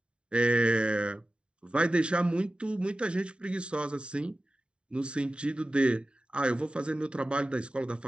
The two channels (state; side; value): late; left; 0.053 ms